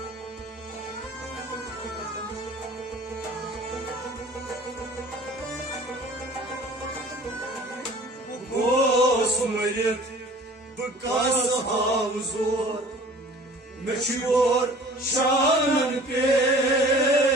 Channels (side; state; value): both; normal; correlation 0.47